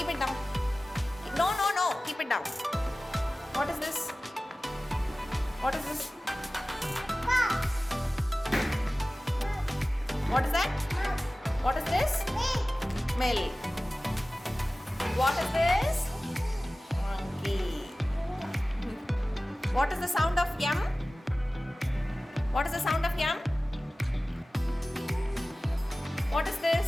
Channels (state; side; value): normal; both; correlation 0.97